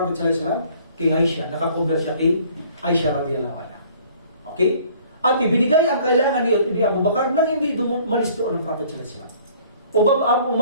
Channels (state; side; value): inverted; both; correlation -0.55